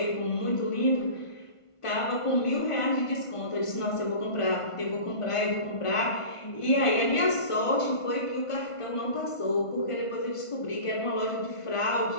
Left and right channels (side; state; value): right; late; 1.5 ms